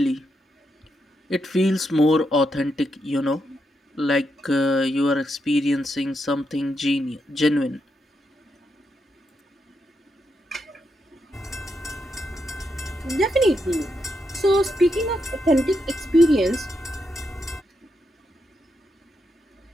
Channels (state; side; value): normal; both; correlation 0.82